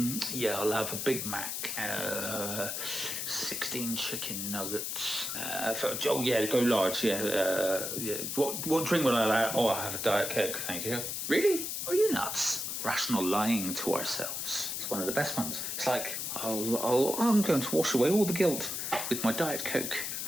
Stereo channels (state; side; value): noise; left; hiss, 3 dB below the sound